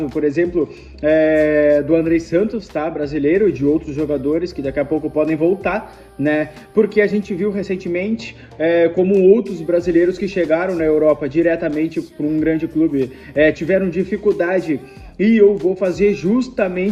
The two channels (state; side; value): identical; both; correlation 1.00